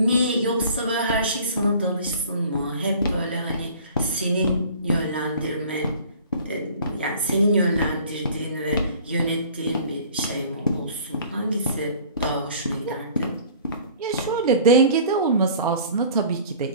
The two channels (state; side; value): inverted; both; correlation -0.48